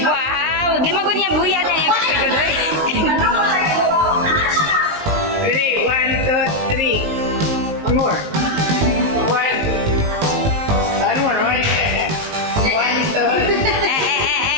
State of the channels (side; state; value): left; late; 19 ms